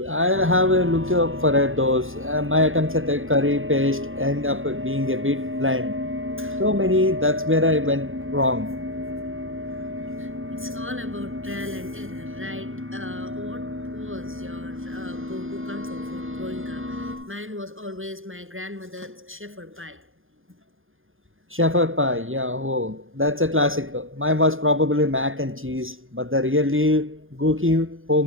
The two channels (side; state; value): left; late; 0.59 ms